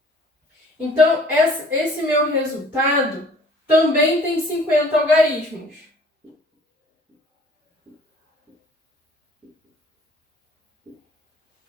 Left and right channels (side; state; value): both; normal; correlation 0.53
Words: Então, esse meu resultado também tem 50 algarismos.